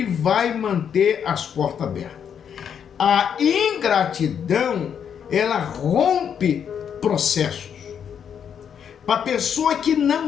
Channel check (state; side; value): quieter; right; 8.0 dB